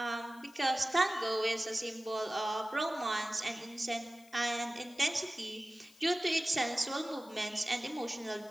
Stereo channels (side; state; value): left; noise; hiss, 25 dB below the sound